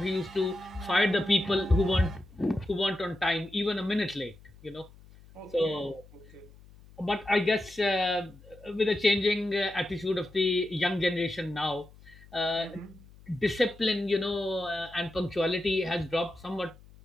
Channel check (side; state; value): left; noise; hum, 23 dB below the sound